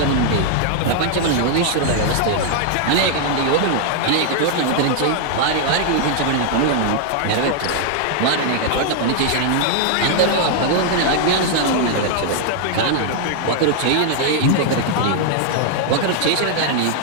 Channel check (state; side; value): different; both; correlation 0.00